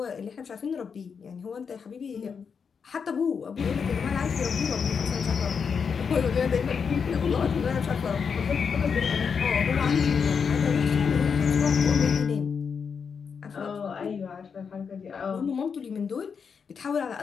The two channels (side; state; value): right; quieter; 6.2 dB